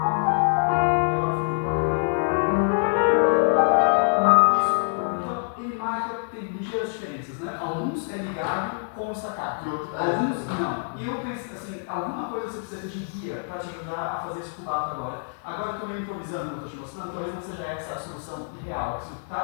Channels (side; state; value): right; silent; 56 dB below the other